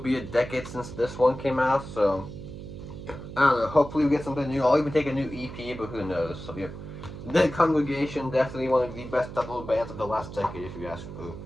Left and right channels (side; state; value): right; noise; hum, 11 dB below the sound